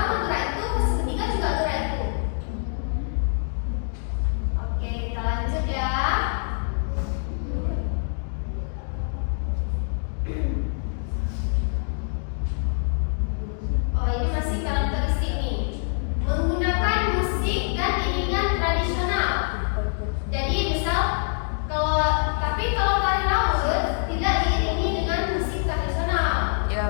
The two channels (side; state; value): right; silent; 62 dB below the other